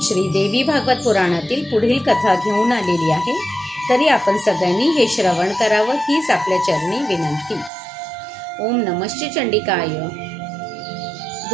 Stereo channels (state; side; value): drops out; left; at 7.7 s